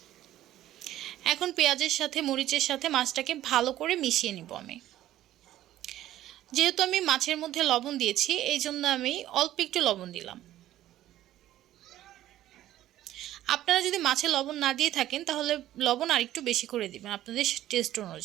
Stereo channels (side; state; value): left; quieter; 13.5 dB